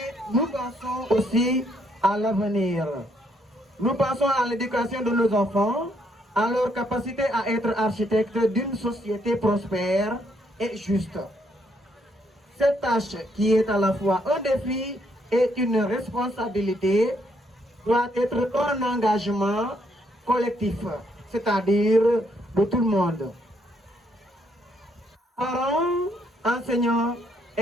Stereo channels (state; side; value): normal; both; correlation 0.72